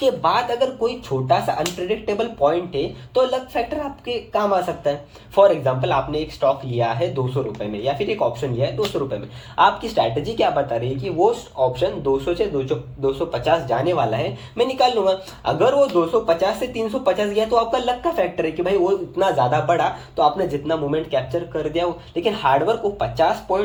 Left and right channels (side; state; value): both; identical; correlation 1.00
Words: बाद अगर कोई छोटा सा अनप्रेडिक्टेबल पॉइंट है तो लक फैक्टर आपके काम आ सकता है। फॉर एग्जाम्पल, आपने एक स्टॉक लिया है 200 रुपये में या फिर एक ऑप्शन लिया है 200 रुपये में, आपकी स्ट्रैटेजी क्या बता रही है कि वो ऑप्शन 200 से 250 जाने वाला है, मैं निकाल लूंगा। अगर वो 250 से 350 गया तो आपका लक का फैक्टर है कि भाई वो इतना ज़्यादा बढ़ा तो आपने जितना मोमेंट कैप्चर कर दिया। लेकिन हार्डवर्क, वो 50